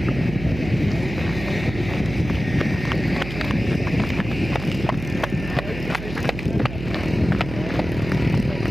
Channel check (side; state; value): right; noise; hum, 9 dB below the sound